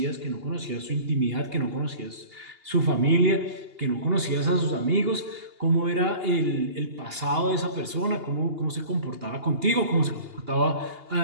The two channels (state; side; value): late; left; 2.8 ms